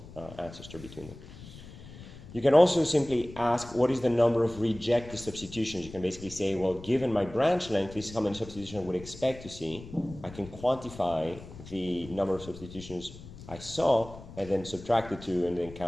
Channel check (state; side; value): noise; left; rumble, 16 dB below the sound